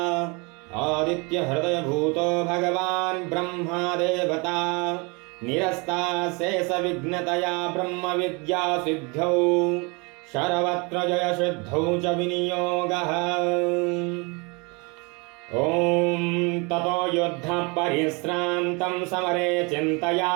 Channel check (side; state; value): left; quieter; 29.8 dB